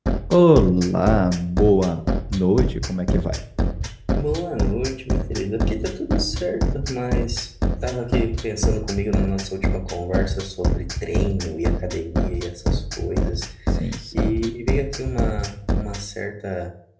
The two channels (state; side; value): identical; both; correlation 1.00